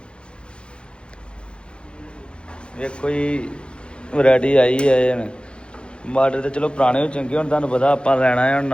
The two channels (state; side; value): late; right; 0.055 ms